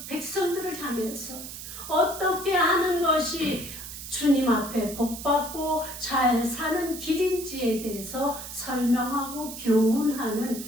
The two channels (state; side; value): noise; right; hiss, 10 dB below the sound